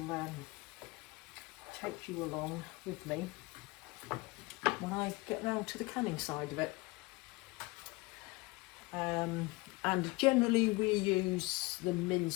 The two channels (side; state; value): right; quieter; 23.8 dB